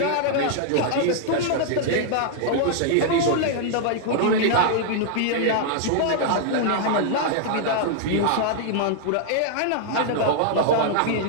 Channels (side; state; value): both; different; correlation 0.00